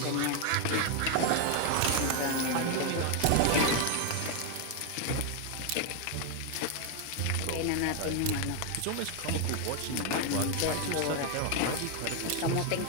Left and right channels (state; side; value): different; both; correlation 0.01